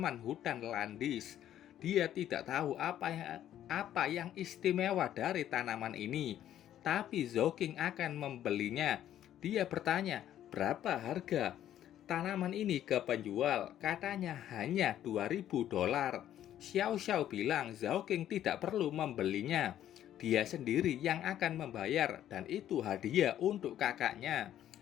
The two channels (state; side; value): quieter; right; 11.5 dB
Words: hutan Landis. Dia tidak tahu apa yang istimewa dari tanaman ini, tapi Zhao King akan membelinya. Dia bertanya, berapa harga tanaman ini ke penjual? Katanya hanya 2.000 dolar. Xiao Xiao bilang Zhao King tidak perlu membelinya. Dia sendiri yang akan membayar dan itu hadiah untuk kakaknya.